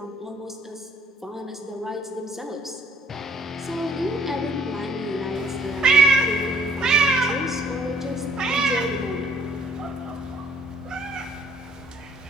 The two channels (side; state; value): both; normal; correlation 0.61